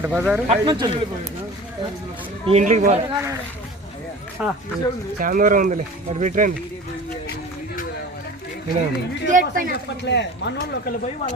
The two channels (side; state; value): both; normal; correlation 0.39